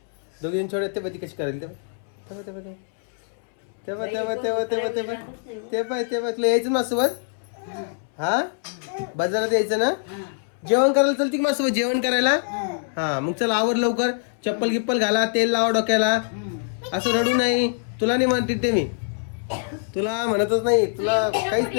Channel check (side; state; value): right; silent; 63 dB below the other